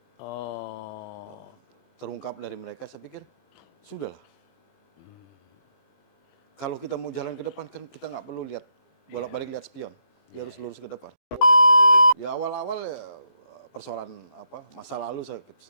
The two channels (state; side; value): late; right; 18 ms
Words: Oh. terungkap dari mereka, saya pikir sudahlah. Kalau kita mau jalan ke depan kan kita nggak perlu lihat bolak-balik lihat spion, dia harus lurus ke depan. Ya awal-awal ya persoalan masa lalu